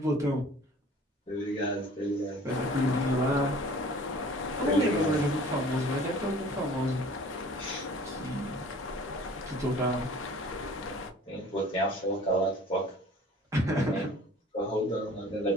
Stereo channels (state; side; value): normal; both; correlation 0.48